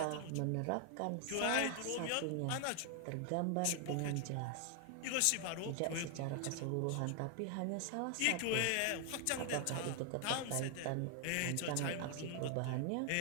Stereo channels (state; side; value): different; both; correlation 0.00